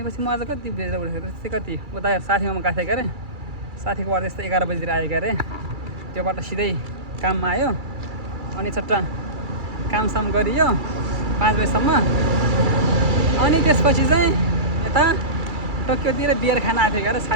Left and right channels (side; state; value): left; late; 2.3 ms